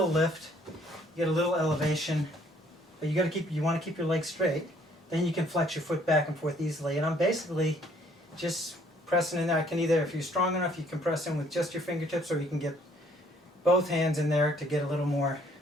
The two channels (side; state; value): both; normal; correlation 0.62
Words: lift, you get a little elevation, but you want to keep your legs straight, then you can flex your foot back and forth easily. And I'm basically just pressing in there. I can either, if you're strong enough, you can press in with just your fingertips, or you can get both hands in there to get a little more